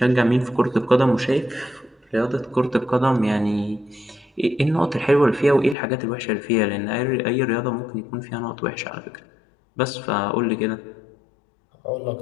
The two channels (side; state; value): right; drops out; at 5.8 s